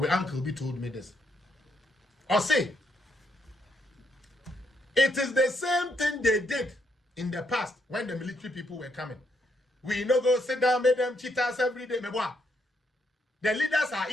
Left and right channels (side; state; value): both; normal; correlation 0.75